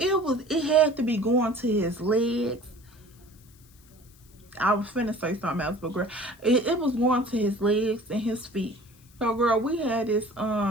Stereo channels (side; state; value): left; noise; hiss, 28 dB below the sound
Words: had to be going to his legs. I was finna say something else, but girl, it was going to his legs and his feet. So girl, we had this